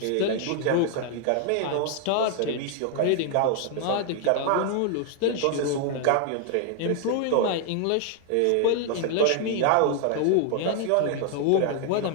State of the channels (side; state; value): both; different; correlation 0.00